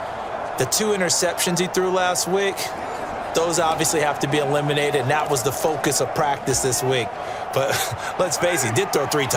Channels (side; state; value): both; identical; correlation 1.00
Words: The 2 interceptions he threw last week, those obviously have to be eliminated, and that was the focus of practice this week. But let's face it, he did throw 3